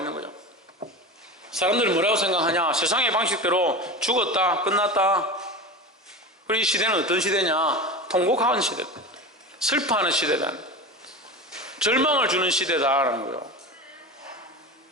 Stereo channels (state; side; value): normal; both; correlation 0.28